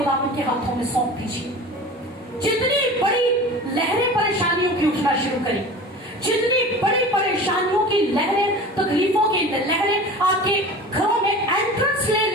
के हाथों में सौंप दीजिए। जितनी बड़ी लहरें परेशानियों की उठना शुरू करें, जितनी बड़ी परेशानियों की लहरें, तकलीफों की लहरें आपके घरों में एंट्रेंस ले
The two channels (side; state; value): both; normal; correlation 0.36